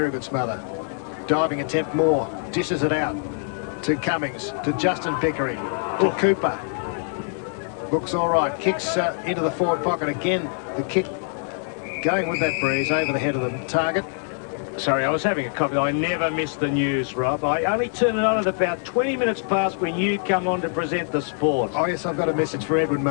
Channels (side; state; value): right; silent; 59 dB below the other